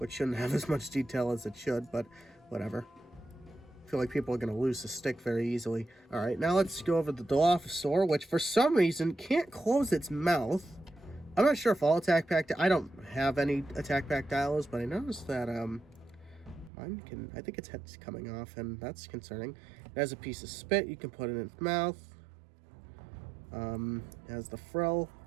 shouldn't have as much detail as it should, but whatever. I feel like people are going to lose the stick very easily. Alright, now let's go over the Dilophosaur, which for some reason can't close its mouth. I'm not sure if all attack pack... I don't have any attack pack dials, but I noticed that mine I think its head's coming off, and that's concerning. It has a piece of spit you can put in its mouth. It has the frill,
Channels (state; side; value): drops out; left; at 16.7 s